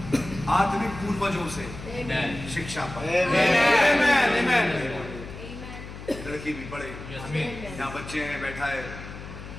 आत्मिक पूर्वजों से शिक्षा पाए। लड़की भी पढ़े। यहाँ बच्चे हैं, बैठा है,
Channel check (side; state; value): left; noise; hum, 12 dB below the sound